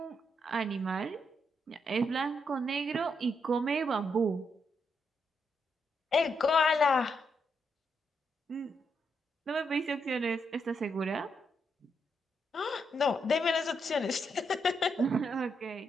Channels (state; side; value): normal; both; correlation 0.79